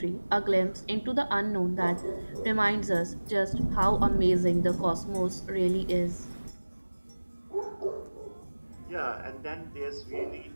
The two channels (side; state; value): both; inverted; correlation -1.00